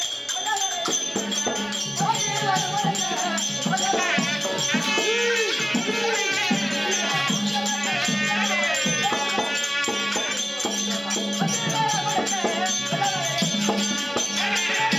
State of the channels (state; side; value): identical; both; correlation 1.00